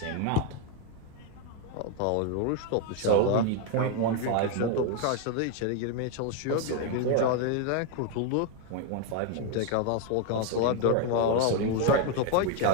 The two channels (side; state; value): both; different; correlation 0.01